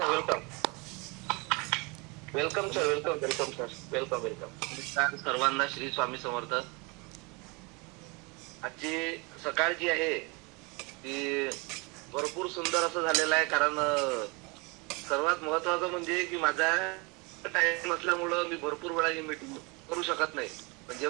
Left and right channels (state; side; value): quieter; left; 28.8 dB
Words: welcome welcome sir, welcome welcome sir, welcome welcome. सर्वांना श्री स्वामी समर्थ. आजची सकाळ जी आहे ती भरपूर सुंदर असं झालेलं आहे. कारण सर्वात महत्वाचं म्हणजे की माझा टाइम असल्यामुळं मी भरपूर वेळा ही मीटिंग करू शकत नाही. पण